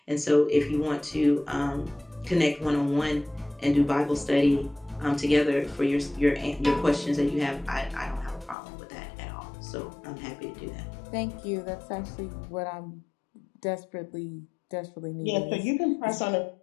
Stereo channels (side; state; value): right; drops out; at 8.6 s